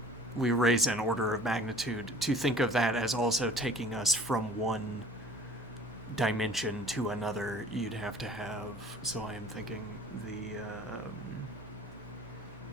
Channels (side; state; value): both; normal; correlation 0.49